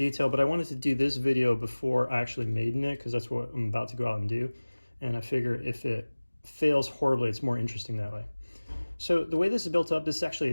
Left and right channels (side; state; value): both; inverted; correlation -1.00